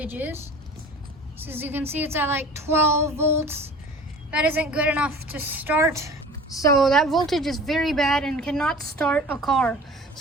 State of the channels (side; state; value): both; normal; correlation 0.42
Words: is. So as you can see, it's at like 12 volts. That isn't good enough to start. So that voltage is very bad and cannot start a car.